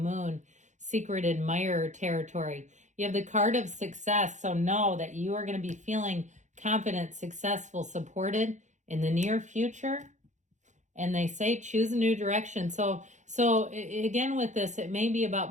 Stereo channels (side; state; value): left; late; 0.35 ms